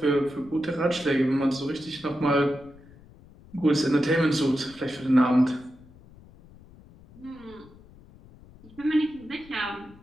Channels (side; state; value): left; noise; rumble, 23 dB below the sound